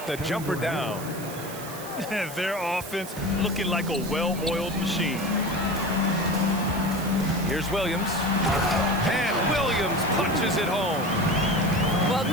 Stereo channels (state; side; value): noise; right; hiss, 13 dB below the sound